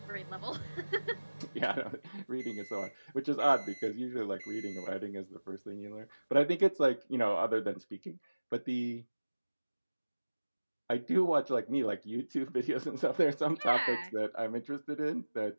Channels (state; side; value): inverted; both; correlation -1.00